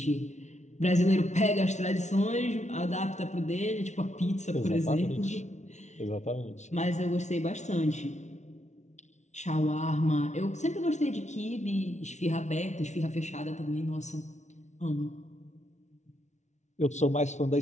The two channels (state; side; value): late; right; 0.33 ms